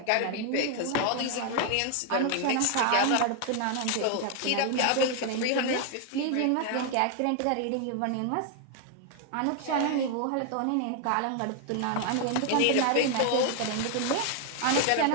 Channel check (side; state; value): both; different; correlation 0.00